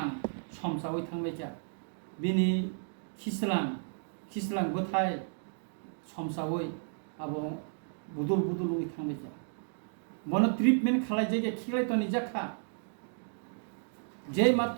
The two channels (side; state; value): left; silent; digital silence